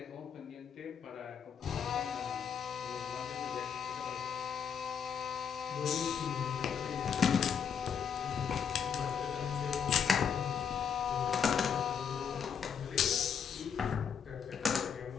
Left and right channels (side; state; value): right; quieter; 7.4 dB